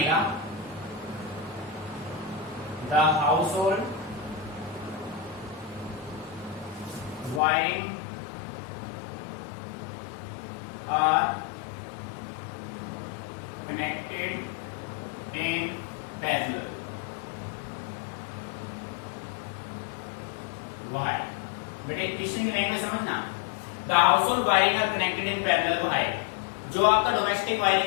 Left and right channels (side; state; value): right; drops out; at 7.4 s